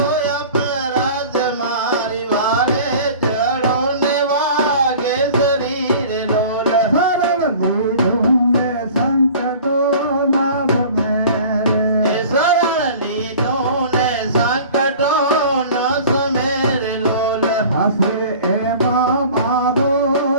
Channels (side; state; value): both; inverted; correlation -0.43